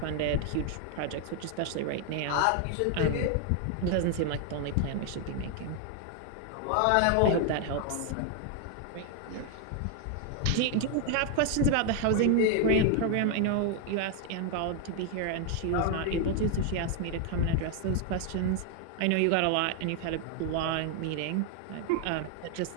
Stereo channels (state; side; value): different; both; correlation 0.00